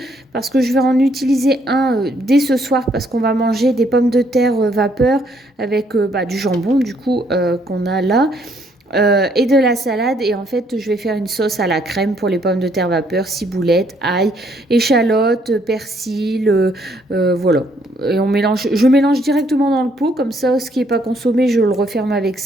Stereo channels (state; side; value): normal; both; correlation 0.69